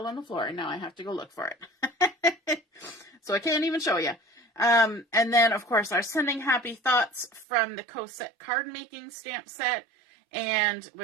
on the floor and now I have to go look for it. So I can't even show you. And then of course our sending happy thoughts from the Cosette Cardmaking stamp set. And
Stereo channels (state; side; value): drops out; left; at 7.5 s